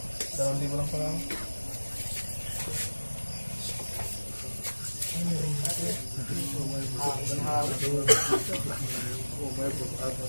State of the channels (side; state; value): both; inverted; correlation -1.00